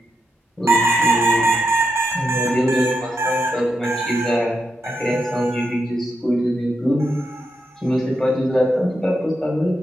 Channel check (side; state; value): both; normal; correlation 0.84